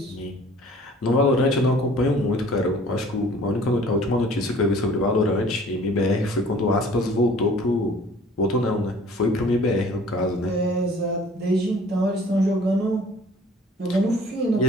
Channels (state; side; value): normal; both; correlation 0.51